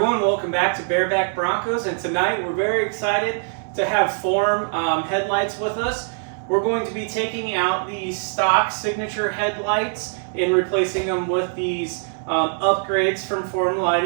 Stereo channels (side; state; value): left; silent; 64 dB below the other